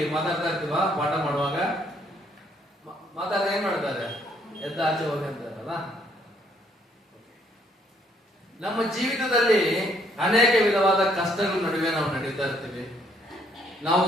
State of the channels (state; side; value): normal; both; correlation 0.67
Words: ಮಾತಾಡ್ತಾ ಇರ್ತೀವ, ಪಾಠ ಮಾಡುವಾಗ ಮಾತಾಡ್ತಾ ಏನ್ ಮಾಡ್ತಾರೆ? ಎದ್ದ ಆಚೆ ಹೋಗಿ ಅಂತಾರಲ್ಲ. ನಮ್ಮ ಜೀವಿತದಲ್ಲಿ ಅನೇಕ ವಿಧವಾದ ಕಷ್ಟಗಳ ನಡುವೆ ನಾವು ನಡೀತಾ ಇರ್ತೀವಿ.